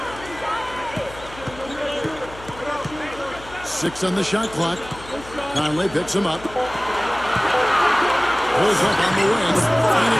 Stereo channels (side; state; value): left; noise; hum, 18 dB below the sound